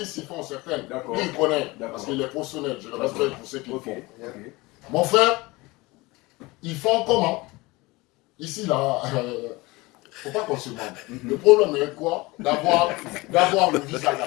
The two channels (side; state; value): right; quieter; 22.5 dB